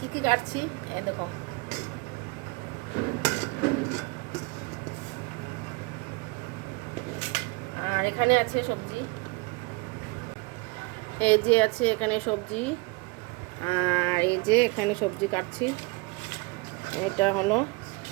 কী কাটছি এই দেখো। আর এখানে আছে সবজি, এই যে আছে এখানে সবজি। আর এই যে এখানে সবজি কাটছি। এটা হলো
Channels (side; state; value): left; quieter; 27.1 dB